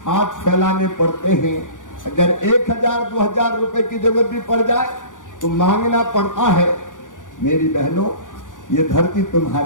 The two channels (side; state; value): right; late; 0.87 ms